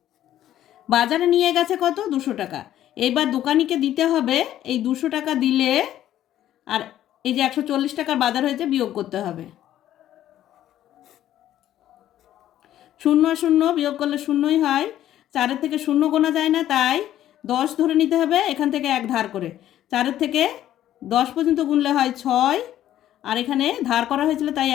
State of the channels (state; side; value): quieter; right; 12.3 dB